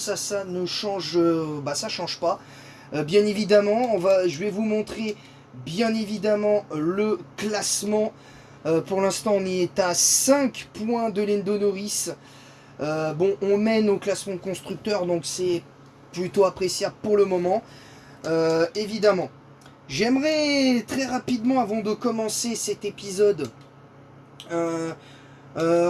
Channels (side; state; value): both; identical; correlation 1.00